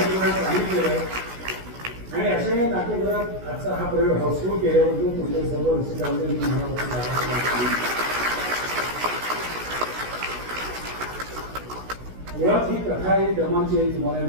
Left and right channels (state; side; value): late; left; 16 ms